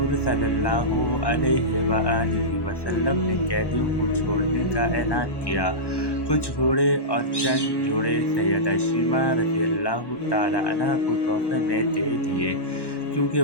सल्लल्लाहु अलैहि वसल्लम ने कैदियों को छोड़ने का ऐलान किया। कुछ घोड़े और चंद जोड़े सैयदा शीमा रज़ियल्लाहु ताला अन्हा को तोहफ़े में दे दिए, क्योंकि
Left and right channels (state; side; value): late; right; 1.1 ms